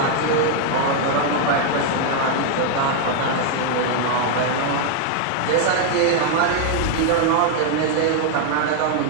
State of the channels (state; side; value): different; both; correlation 0.00